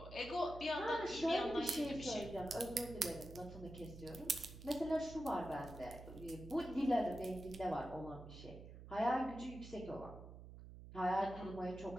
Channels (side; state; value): right; noise; hum, 14 dB below the sound